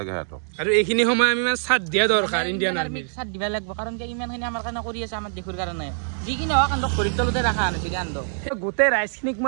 হাতক আৰু এইখিনি সময় আমি মানে সাথ দিয়া দৰকাৰ ইণ্ডিয়ান আৰ্মি সাথ দিবা লাগিব কাৰণ কি ইমানখিনি আমাৰ কাৰণে কৰি আছে আমাৰ দেশৰ কাৰণে যিকিনে হওক কান্দক পৰিতলতে ৰাখা আনিছে কান্দক গোটেই ৰাইজখিনিক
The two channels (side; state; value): left; silent; digital silence